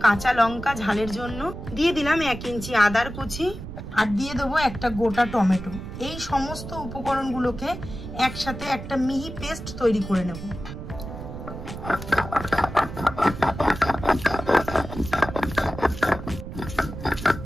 কাঁচা লঙ্কা ঝালের জন্য, দিয়ে দিলাম 1 ইঞ্চি আদার কুচি, আর দিয়ে দেবো একটা গোটা টমেটো। এই সমস্ত উপকরণগুলোকে একসাথে একটা মিহি পেস্ট তৈরি করে নেব।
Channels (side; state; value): right; noise; rumble, 10 dB below the sound